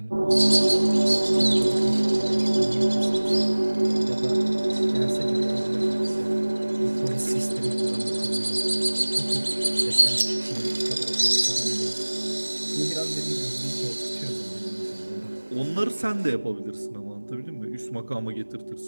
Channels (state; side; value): inverted; both; correlation -1.00